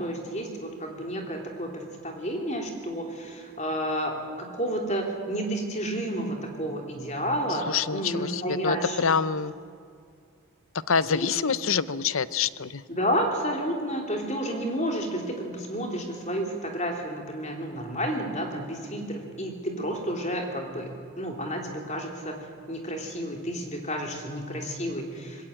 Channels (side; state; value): both; normal; correlation 0.04